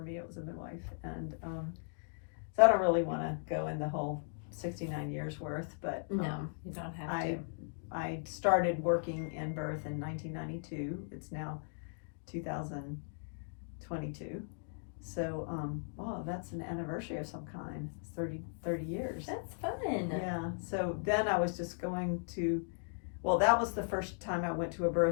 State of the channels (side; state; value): right; silent; digital silence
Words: it was a midwife. And so I don't really want to go in the whole 69 years worth, but no, you don't have to. I started working in birth in 1992. It's now 2022. So, that's an anniversary of some kind. It's 30 years. That's fun. Yeah. So then I was just going to, that was the first time I went to a